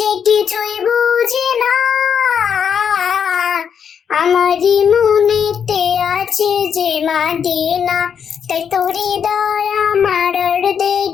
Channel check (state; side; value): quieter; right; 7.5 dB